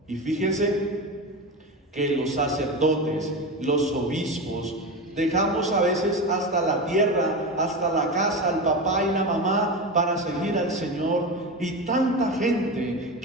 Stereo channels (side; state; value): both; normal; correlation 0.21